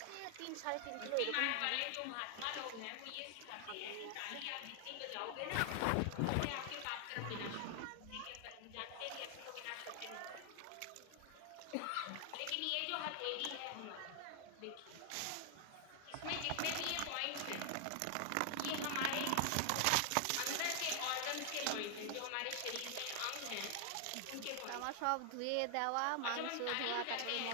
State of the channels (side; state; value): both; different; correlation 0.00